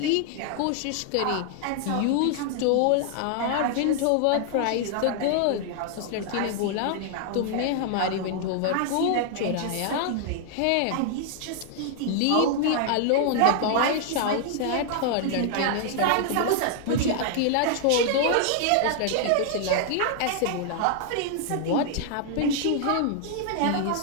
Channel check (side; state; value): both; different; correlation 0.00